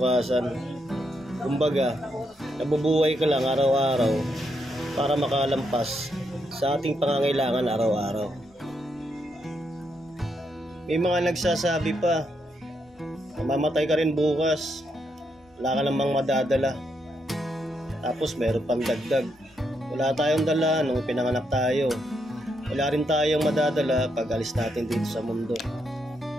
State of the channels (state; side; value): normal; both; correlation 0.79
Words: Kumbaga, nabubuhay ka lang araw-araw para makalampas sa ating pangangailangan araw-araw. May mga nagsasabi pa, mamamatay ka rin bukas, wala ka namang madadala. Tapos meron pang dagdag, wala tayong dala nung pinanganak tayo, wala rin tayong madadala pag alis natin dito sa mundo.